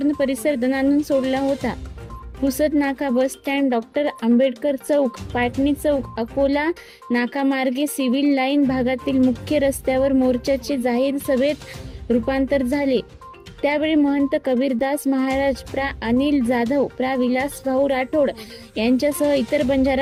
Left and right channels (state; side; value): identical; both; correlation 1.00